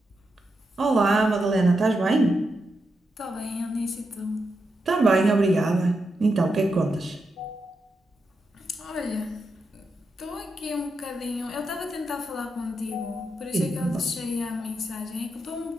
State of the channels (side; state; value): both; normal; correlation 0.85